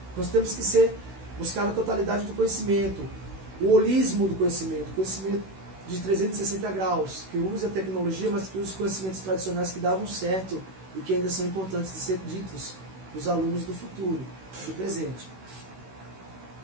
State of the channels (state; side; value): late; left; 16 ms